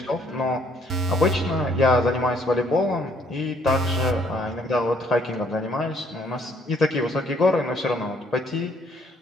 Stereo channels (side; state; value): both; normal; correlation 0.65